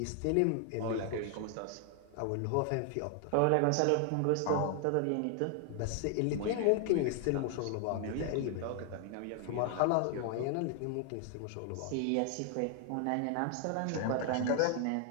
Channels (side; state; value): both; different; correlation 0.00